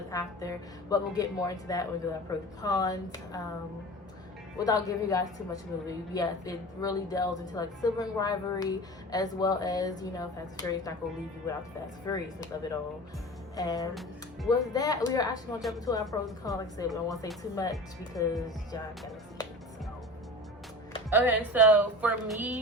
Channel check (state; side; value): normal; both; correlation 0.35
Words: after, but we'll get more into that when we do our pros and cons. Without giving you guys too much of the movie, yes, it really delves into like sibling rivalry as well as, you know, Fast and Furious not gonna leave you without the Fast and Furiousness of it all. And with that, we are actually gonna jump into our pros and cons. Like I said, we don't want to say too much because y'all gotta see it. So. Okay, so for